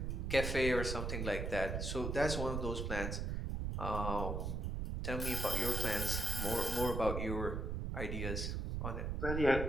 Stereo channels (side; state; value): right; noise; rumble, 1 dB below the sound